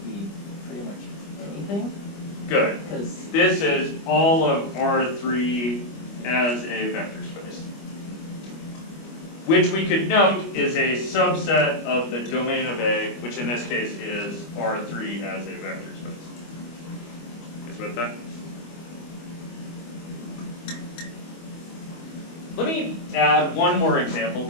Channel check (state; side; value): late; right; 25 ms